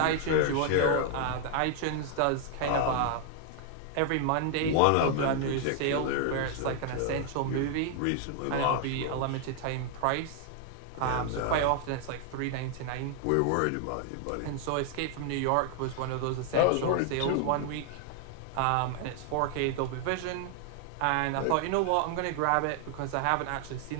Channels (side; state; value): both; different; correlation 0.00